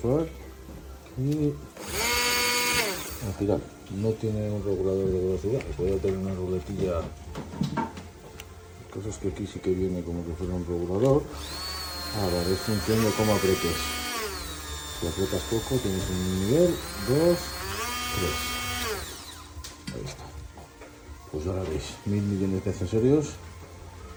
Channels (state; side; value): identical; both; correlation 1.00